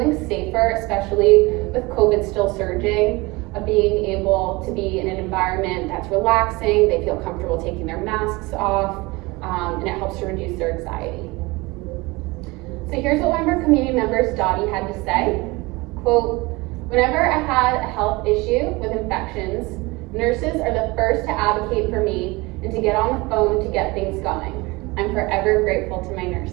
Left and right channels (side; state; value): left; quieter; 23.5 dB